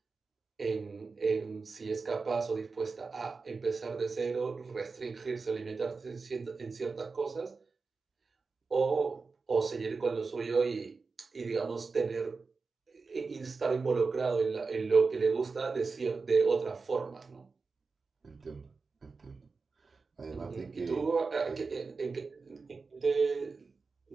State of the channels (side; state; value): left; quieter; 4.4 dB